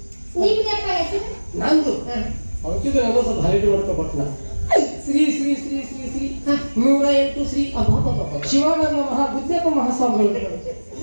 ನಿಮ್ದಪ್ಪ ಹೆಸರು ನಂದು ಹಾ. ಅವತ್ತಿಗೆ ನಾನು ಸ್ವಲ್ಪ ಹೈಲೈಟ್ ಮಾಡ್ಕೊಬಟ್ನ ಶ್ರೀ ಶ್ರೀ ಶ್ರೀ ಶ್ರೀ ಶ್ರೀ ಹಾ. 108 ಶ್ರೀ ಶಿವಾನಂದ ಮಹಾಬುದ್ಧಪ್ಪ ಮಹಾಸ್ವಾಮಿಗಳು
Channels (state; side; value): inverted; both; correlation -1.00